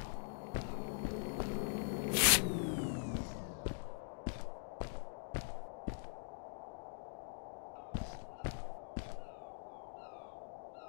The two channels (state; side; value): silent; right; digital silence